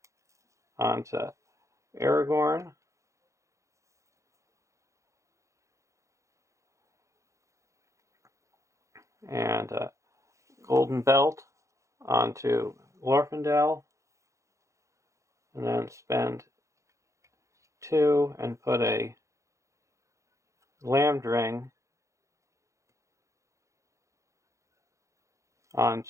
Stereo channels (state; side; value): late; left; 0.15 ms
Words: onto Aragorn, and a Golden Belt onto Glorfindel, and then spend 2 and put a Glamdring